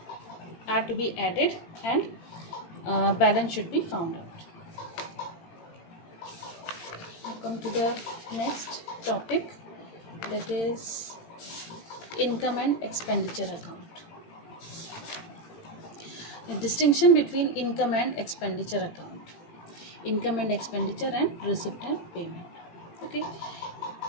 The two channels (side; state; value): right; late; 18 ms